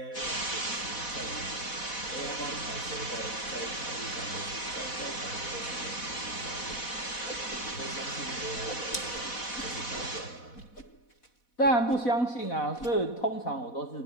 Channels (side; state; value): right; late; 4.1 ms